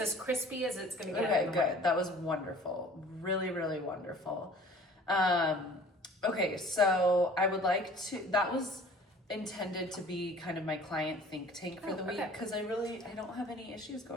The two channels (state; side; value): normal; both; correlation 0.49